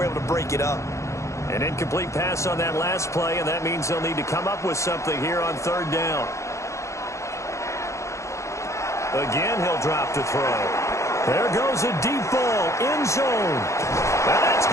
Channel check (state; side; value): late; right; 0.14 ms